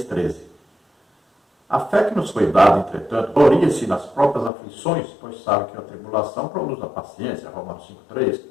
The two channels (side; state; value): right; drops out; at 4.5 s